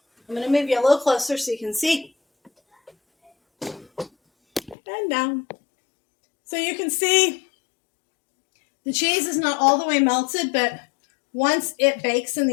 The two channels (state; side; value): drops out; right; at 4.8 s